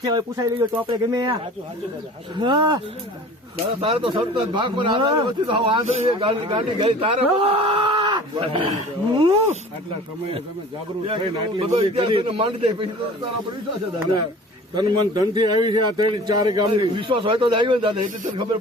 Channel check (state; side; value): normal; both; correlation 0.43